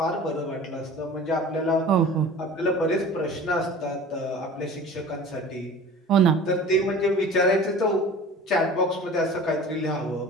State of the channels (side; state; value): both; normal; correlation 0.41